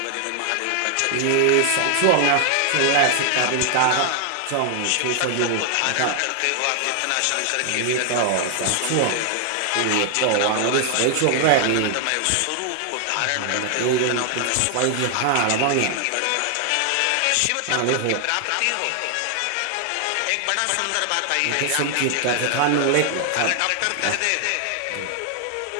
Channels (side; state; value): both; different; correlation 0.00